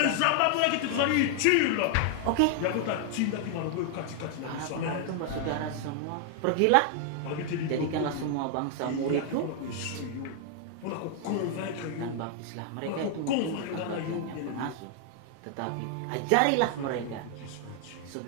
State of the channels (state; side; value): different; both; correlation 0.00